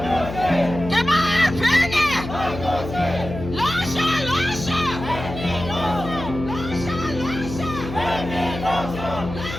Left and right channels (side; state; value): left; noise; hum, 9 dB below the sound